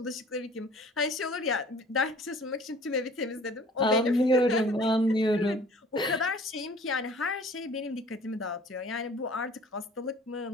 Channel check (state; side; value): normal; both; correlation 0.50